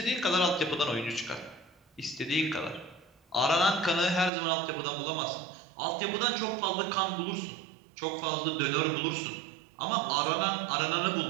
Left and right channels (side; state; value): left; drops out; at 4.3 s